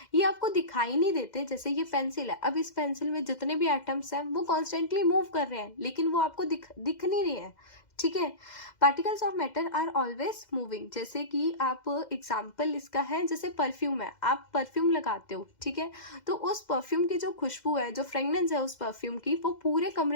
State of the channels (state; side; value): late; right; 2.0 ms